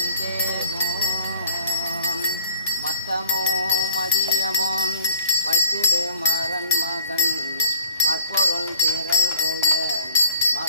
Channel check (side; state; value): both; inverted; correlation -0.55